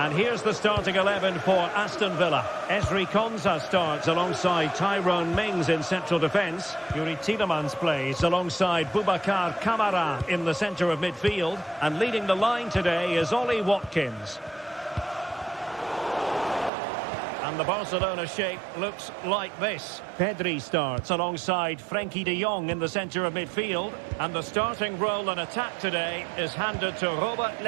here's the starting 11 for Aston Villa. Ezri Konsa starts alongside Tyrone Mings in central defence. Yuri Tielemans plays alongside Boubacar Kamara in the centre of midfield. And leading the line today is Ollie Watkins. And the Barcelona shape looks like this. Pedri starts alongside Frenkie de Jong in the centre of midfield. And the starting role in attack today is handed to Robert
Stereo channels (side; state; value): left; drops out; at 16.7 s